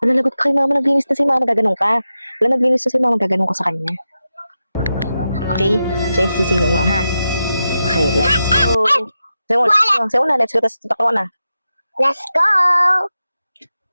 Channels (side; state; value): both; inverted; correlation -0.90